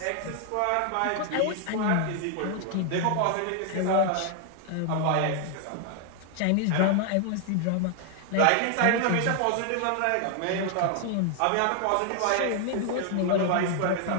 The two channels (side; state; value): both; different; correlation 0.00